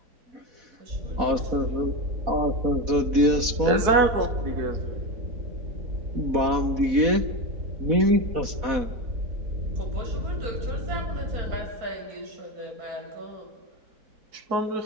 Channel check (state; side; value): late; left; 4.1 ms